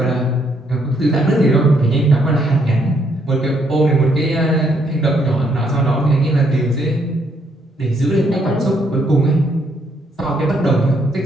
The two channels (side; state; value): both; normal; correlation 0.72